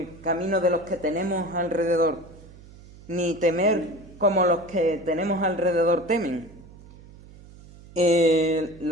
camino de los que tenemos alrededor, ni temer como los que tenemos alrededor temen.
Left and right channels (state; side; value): noise; right; hum, 21 dB below the sound